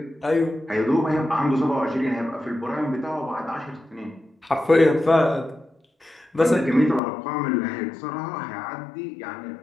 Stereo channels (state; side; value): drops out; right; at 7.0 s